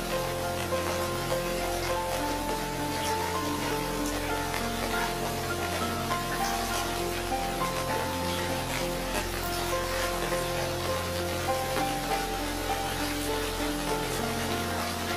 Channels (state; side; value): identical; both; correlation 1.00